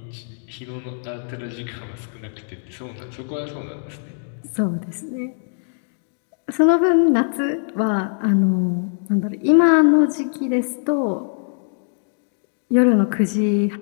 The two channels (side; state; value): right; silent; digital silence